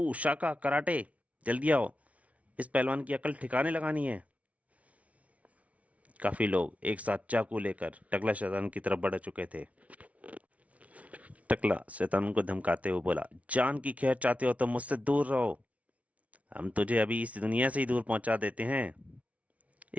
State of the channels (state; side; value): late; left; 0.066 ms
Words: शाका, कराटे, जल्दी आओ, इस पहलवान की अकल ठिकाने लगानी है। काफी लोग एक साथ चाकू लेकर टकला शैतान की तरफ बढ़ चुके थे। टकला शैतान को धमकाते हुए बोला, जान की खैर चाहते हो तो मुझसे दूर रहो। हम तुझे अभी इस दुनिया से ही दूर पहुंचा देते हैं।